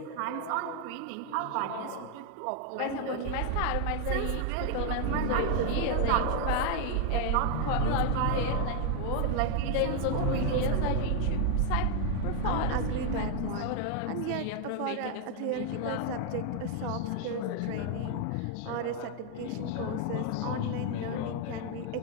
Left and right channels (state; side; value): different; both; correlation 0.01